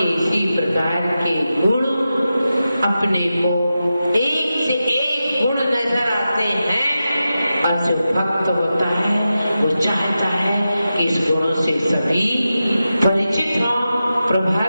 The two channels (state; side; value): inverted; both; correlation -0.91